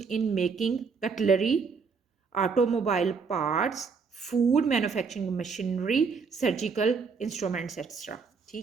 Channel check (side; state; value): left; quieter; 5.2 dB